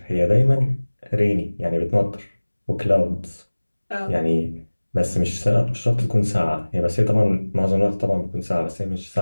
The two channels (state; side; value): inverted; both; correlation -1.00